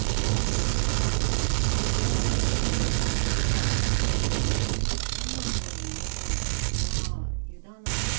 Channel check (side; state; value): left; silent; digital silence